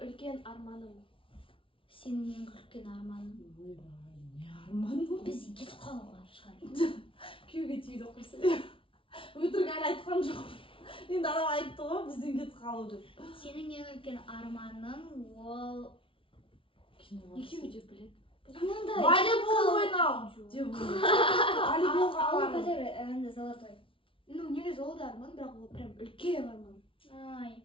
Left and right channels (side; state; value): right; late; 0.25 ms